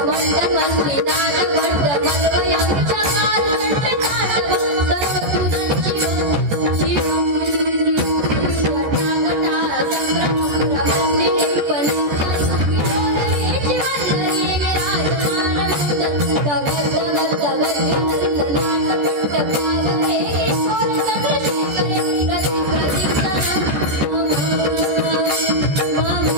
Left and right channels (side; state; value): left; late; 14 ms